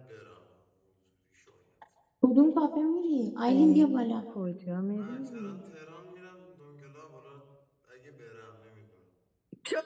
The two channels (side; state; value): both; identical; correlation 1.00